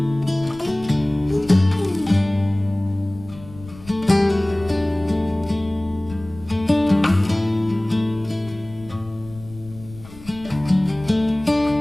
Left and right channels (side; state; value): left; noise; rumble, 19 dB below the sound